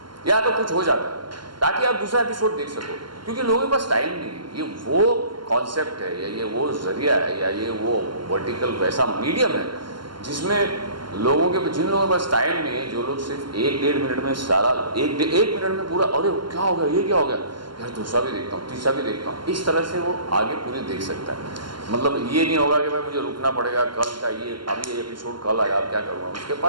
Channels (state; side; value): late; left; 0.72 ms